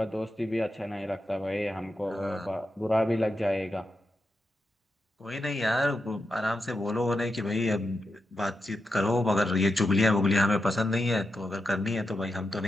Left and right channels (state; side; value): normal; both; correlation 0.87